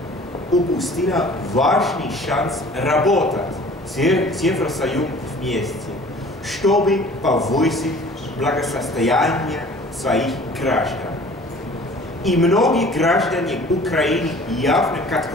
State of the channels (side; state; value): both; normal; correlation 0.48